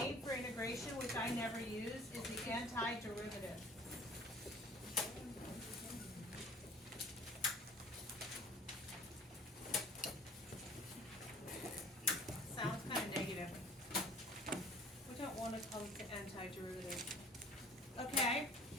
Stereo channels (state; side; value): normal; both; correlation 0.49